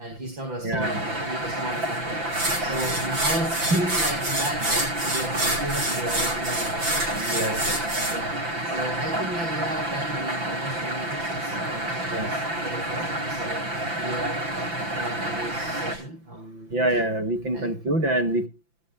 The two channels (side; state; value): left; late; 5.9 ms